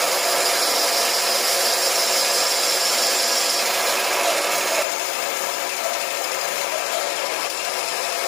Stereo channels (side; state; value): right; drops out; at 4.9 s